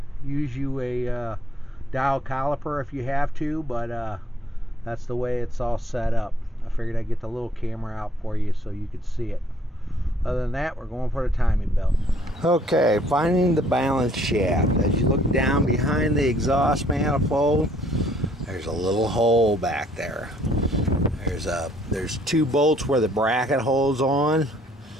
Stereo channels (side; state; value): both; normal; correlation 0.64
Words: Use you a dial caliper if you have to, but that's the way it's all set up. I figured I'd get the little camera out for you so you could see it. Other than that, we're going for the timing belt. Okay, finding the balance shaft. As you look down behind the exhaust manifold, there's a little hole back there. There's two bolts where the bracket holds on.